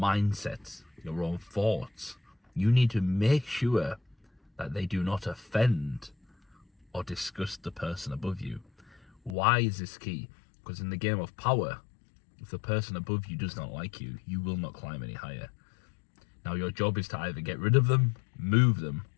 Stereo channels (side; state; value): right; drops out; at 9.3 s